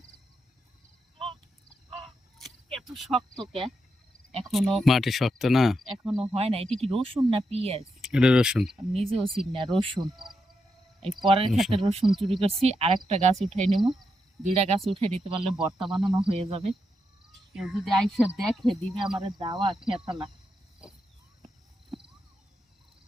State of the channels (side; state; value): both; normal; correlation 0.84